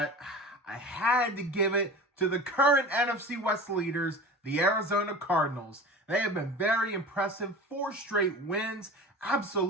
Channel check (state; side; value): normal; both; correlation 0.35